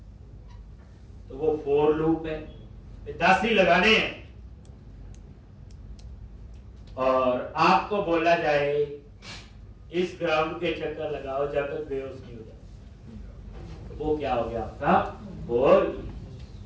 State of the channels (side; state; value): both; identical; correlation 1.00